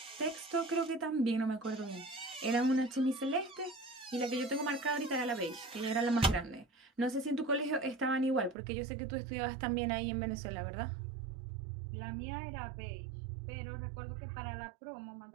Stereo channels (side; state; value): left; drops out; at 8.6 s